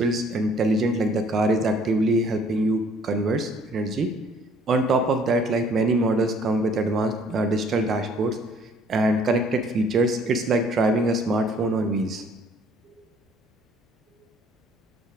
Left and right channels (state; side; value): normal; both; correlation 0.58